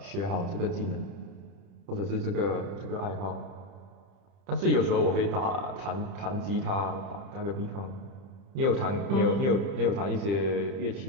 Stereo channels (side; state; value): left; late; 30 ms